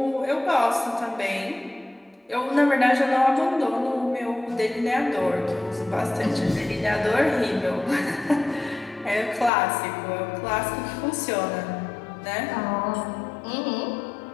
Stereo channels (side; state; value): right; drops out; at 9.5 s